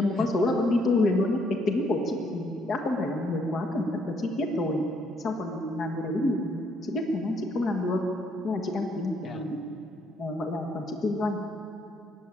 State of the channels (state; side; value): normal; both; correlation 0.70